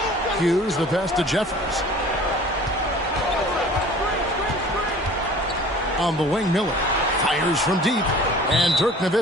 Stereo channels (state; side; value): normal; both; correlation 0.46